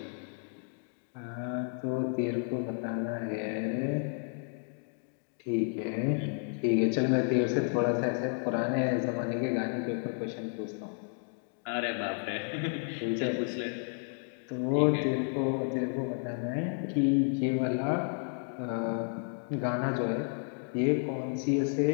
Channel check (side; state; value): right; silent; 57 dB below the other